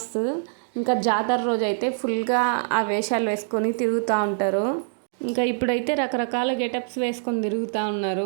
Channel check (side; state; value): left; silent; digital silence